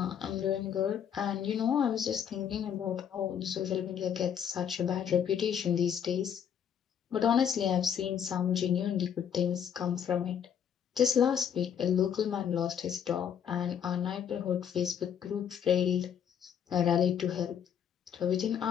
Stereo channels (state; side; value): quieter; right; 8.4 dB